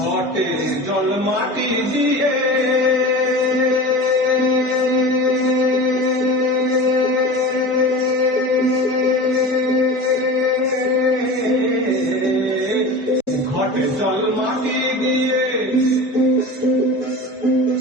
জল মাটি দিয়ে, ঘটে জল মাটি দিয়ে,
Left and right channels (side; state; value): both; normal; correlation 0.33